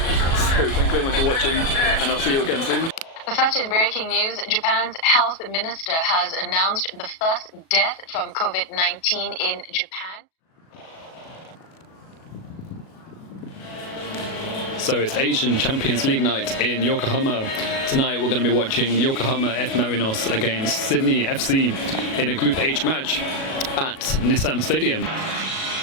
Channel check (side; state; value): right; late; 37 ms